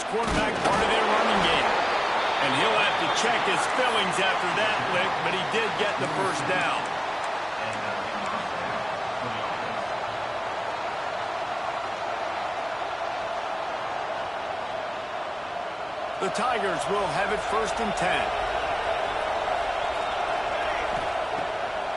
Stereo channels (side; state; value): both; identical; correlation 1.00